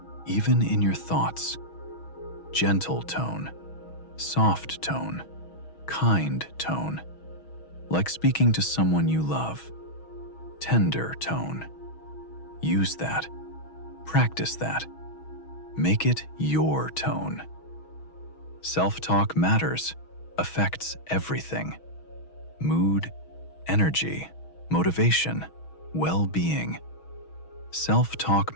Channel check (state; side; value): late; right; 6.2 ms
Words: even in your thoughts. Gentle tone, soft tone, kind tone, like speaking to someone you love. Tender tone. Use that. Practice that. Make it your tone. Self-talk matters, affects everything. Mood, energy, motivation, well-being. Self-talk